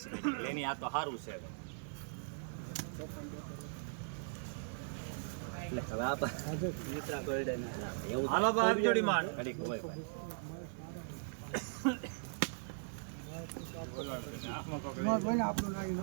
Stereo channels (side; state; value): left; silent; 52 dB below the other